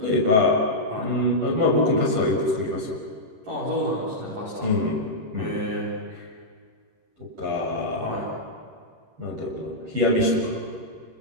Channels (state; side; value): late; left; 11 ms